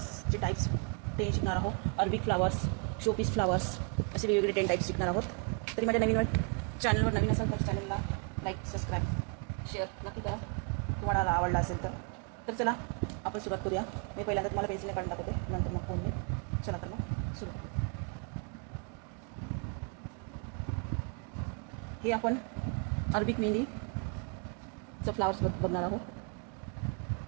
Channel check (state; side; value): quieter; left; 36.5 dB